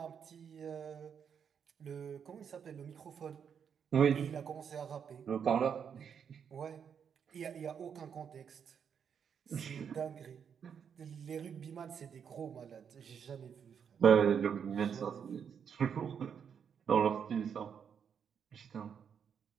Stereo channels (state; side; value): quieter; left; 7.4 dB